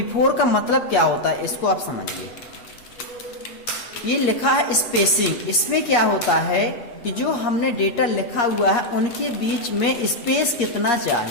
का मतलब क्या होता है, इसको आप समझिए। ये लिखा है स्पेसिंग, इसमें क्या होता है कि जो हमने डेटा लिखा हुआ है उनके बीच में स्पेस कितना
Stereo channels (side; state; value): right; late; 8.5 ms